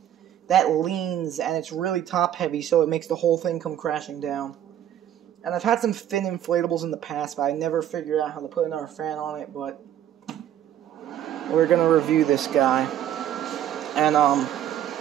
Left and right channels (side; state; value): left; quieter; 11.0 dB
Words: that leans, and it's really top heavy, so it makes the whole thing come crashing down. And I've had some thin inflatables in the past, but I never figured out how to put another fan on it, but we're gonna review this guy. And I'm